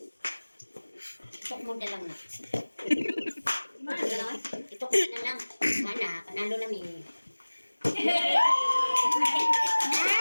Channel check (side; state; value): both; inverted; correlation -1.00